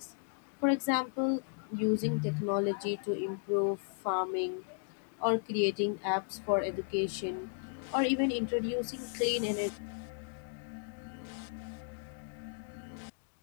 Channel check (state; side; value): silent; right; digital silence